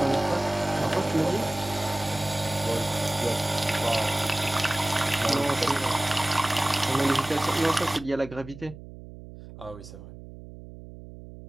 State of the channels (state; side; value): noise; right; hum, 15 dB below the sound